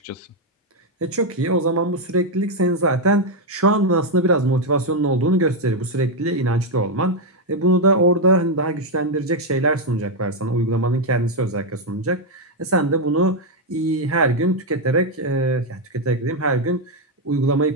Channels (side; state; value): both; normal; correlation 0.02